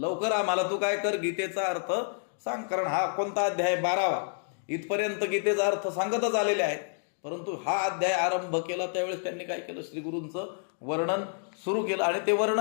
आम्हाला तू काय कर, गीतेचा अर्थ सांग. कारण हा कोणता अध्याय, 12वा. इथपर्यंत गीतेचा अर्थ सांगतच आलेले आहेत. परंतु हा अध्याय आरंभ केला त्यावेळेस त्यांनी काय केलं, श्रीगुरूंचं वर्णन सुरू केलं. आणि ते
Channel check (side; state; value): right; silent; digital silence